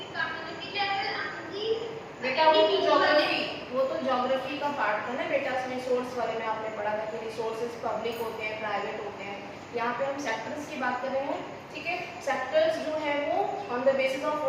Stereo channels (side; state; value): both; identical; correlation 1.00